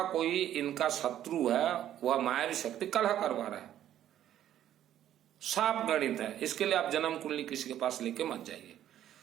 कोई इनका शत्रु है, वह मायावी शक्ति कलह करवा रहा है। साफ गणित है, इसके लिए आप जन्म कुंडली किसी के पास लेके मत जाइए।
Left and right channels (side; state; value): left; quieter; 11.5 dB